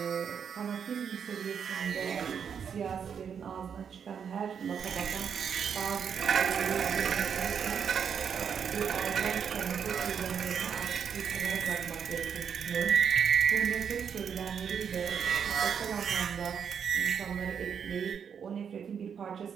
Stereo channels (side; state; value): left; quieter; 7.3 dB